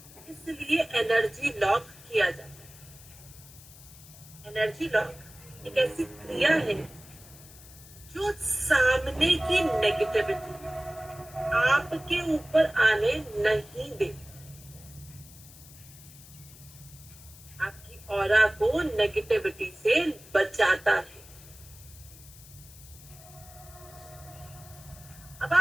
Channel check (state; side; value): noise; left; hiss, 20 dB below the sound